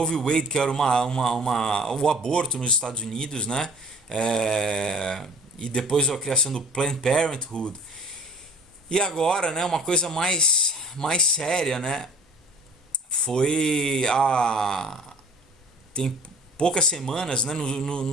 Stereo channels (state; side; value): normal; both; correlation 0.48